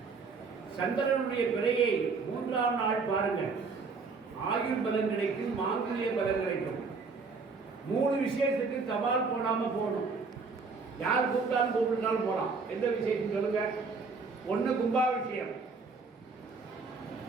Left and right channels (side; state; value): left; quieter; 4.5 dB